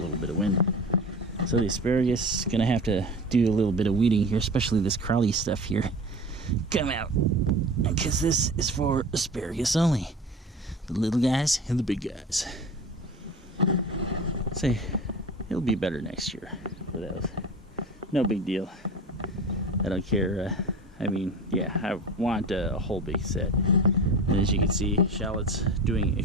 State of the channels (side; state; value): both; normal; correlation 0.34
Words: bit of wind. So the asparagus is going to have to do a little bit of weeding here, especially this crawly stuff here. Come out, because this is for asparagus only. The little guys and the big guys. Say, it'll be better next year for those. No big deal. I don't care. I mean, yeah, I want a whole big set. And as you can see, shallot's doing